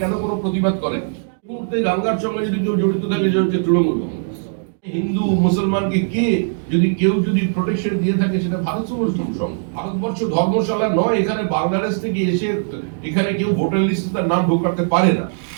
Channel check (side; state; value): left; silent; digital silence